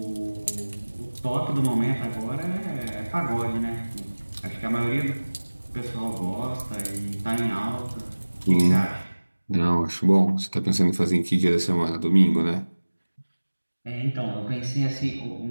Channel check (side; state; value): both; inverted; correlation -1.00